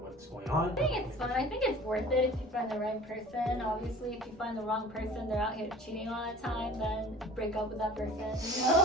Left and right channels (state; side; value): normal; both; correlation 0.44